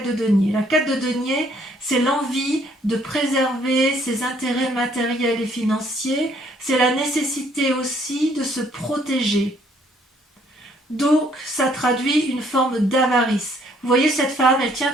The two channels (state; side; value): normal; both; correlation 0.65